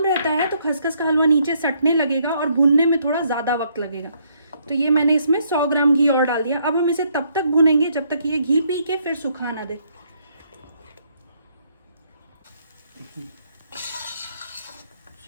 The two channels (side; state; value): both; inverted; correlation -0.70